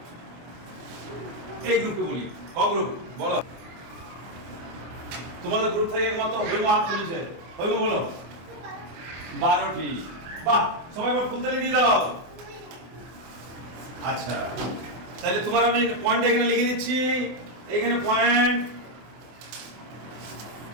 এই গ্রুপে বলি? ক গ্রুপ বলো? তোমাদের গ্রুপ থেকে একমাত্র হৈম হাত তুলেছে। হৈম বলো। 12টি। বাহ, সবাই ফুলতালি দিয়ে দাও। আচ্ছা, তাহলে তোমার আমি পয়েন্ট এখানে লিখে দিচ্ছি। এখানে পয়েন্ট,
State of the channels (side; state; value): left; late; 24 ms